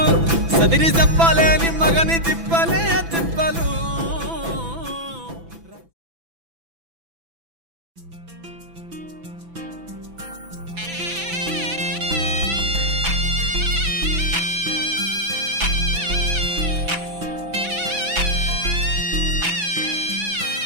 సదిరి చెప్పలేని మగని తిప్పలే తిప్పలు.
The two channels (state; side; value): late; left; 6.0 ms